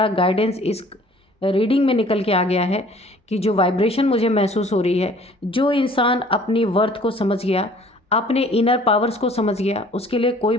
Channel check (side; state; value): both; normal; correlation 0.53